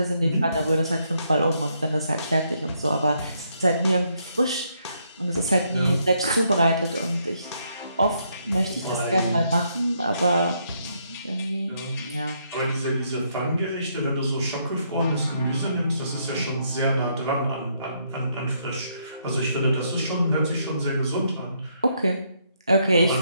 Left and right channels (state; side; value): inverted; both; correlation -0.74